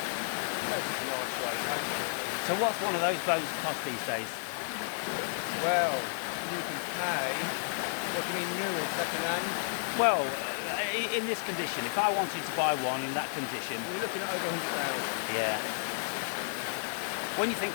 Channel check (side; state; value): right; silent; digital silence